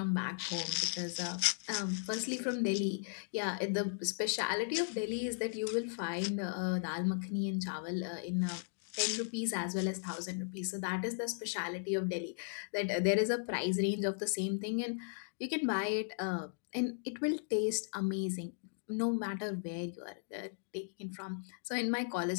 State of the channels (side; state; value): right; silent; digital silence